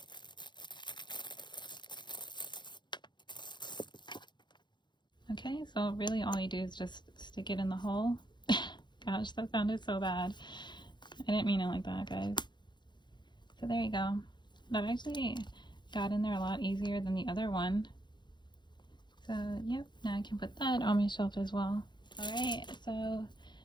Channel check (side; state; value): right; late; 0.22 ms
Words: Okay, so really all you do is just stick it in the hole. Gosh, that sounded so bad. I didn't mean it like that, guys. So there you go. That actually got in there a lot easier than the other one. So yep, now I can put that on my shelf as well. Alright, so